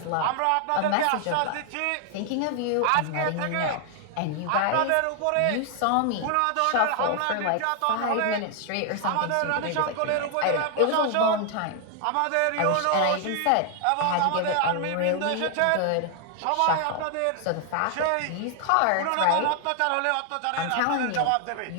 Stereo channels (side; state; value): both; different; correlation 0.00